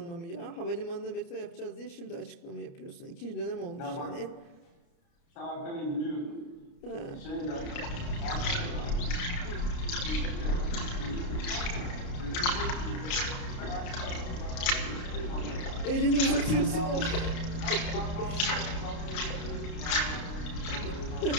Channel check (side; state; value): right; late; 29 ms